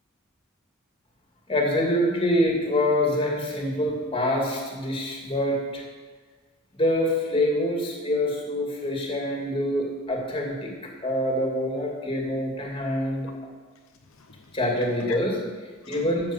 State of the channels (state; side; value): normal; both; correlation 0.38